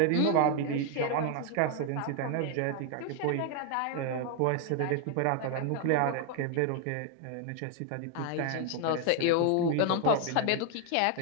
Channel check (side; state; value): both; different; correlation 0.00